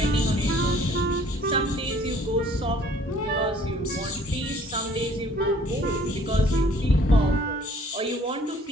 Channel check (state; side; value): normal; both; correlation 0.57